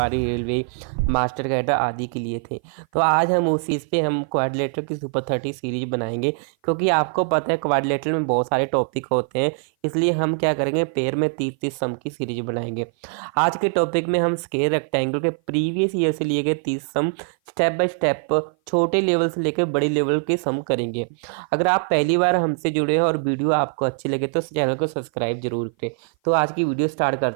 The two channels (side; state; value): left; silent; 56 dB below the other